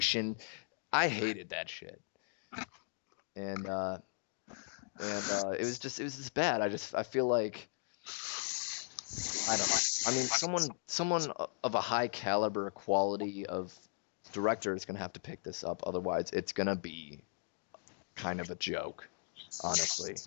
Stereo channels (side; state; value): right; silent; digital silence